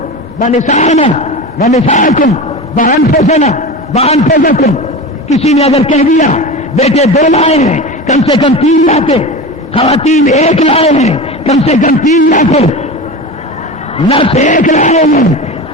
ونسانا ونساکم وانفسنا وانفسکم. کسی نے اگر کہہ دیا بیٹے دو لائے ہیں، کم سے کم 3 لاتے، خواتین 1 لائے ہیں، کم سے کم 3 لاتے، نفس 1 لائے ہیں،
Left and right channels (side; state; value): both; normal; correlation 0.28